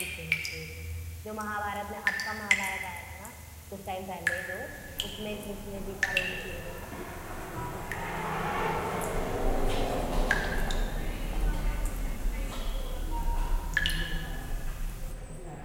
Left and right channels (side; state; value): both; identical; correlation 1.00